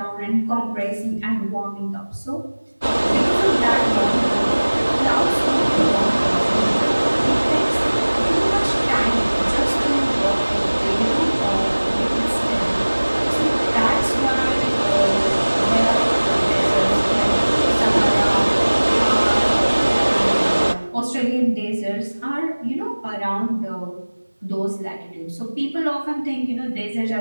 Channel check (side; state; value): both; inverted; correlation -1.00